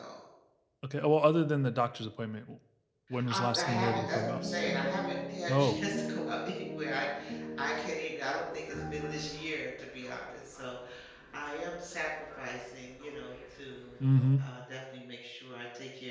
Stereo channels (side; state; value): both; identical; correlation 1.00